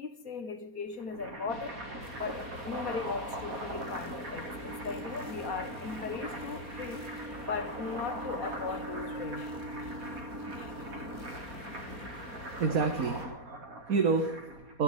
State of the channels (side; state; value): left; late; 4.2 ms